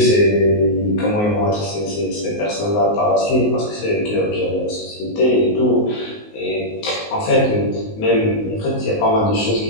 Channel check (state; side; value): late; right; 19 ms